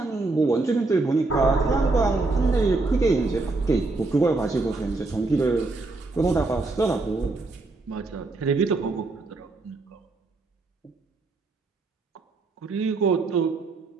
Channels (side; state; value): left; quieter; 3.4 dB